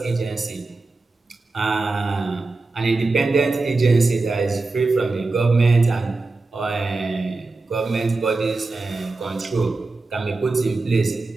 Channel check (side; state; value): left; quieter; 3.5 dB